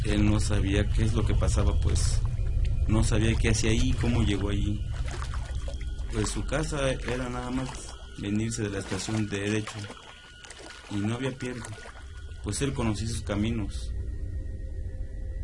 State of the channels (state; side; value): identical; both; correlation 1.00